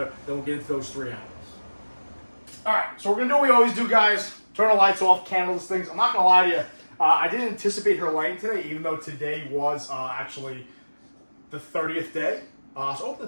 then we'll get into those 3 animals. All right, so we're going to do what we always do, guys. Turn the lights off, candle these things. I'm not going to lie to you, I didn't anticipate her laying today, even though today was actually the 30th day. So open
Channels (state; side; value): inverted; both; correlation -1.00